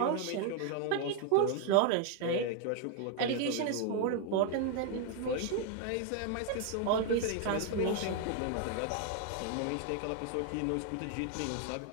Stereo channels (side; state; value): both; different; correlation 0.00